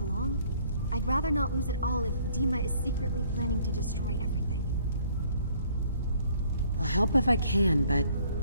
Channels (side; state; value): both; inverted; correlation -0.61